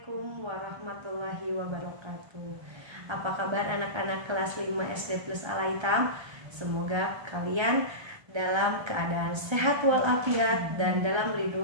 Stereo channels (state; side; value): late; left; 1.3 ms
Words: warahmatullahi wabarakatuh. Apa kabar anak-anak kelas 5 SD plus Al-Aitam? Semoga kalian dalam keadaan sehat walafiat dan dalam